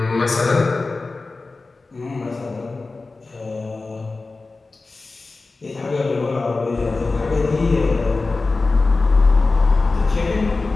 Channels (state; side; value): quieter; right; 3.6 dB